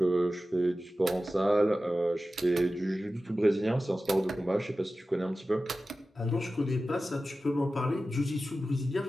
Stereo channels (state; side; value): normal; both; correlation 0.95